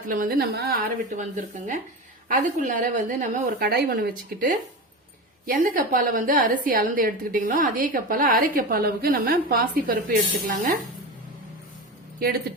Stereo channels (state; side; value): normal; both; correlation 0.24